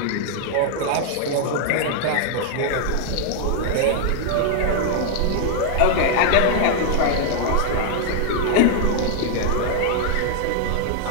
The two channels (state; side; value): different; both; correlation 0.00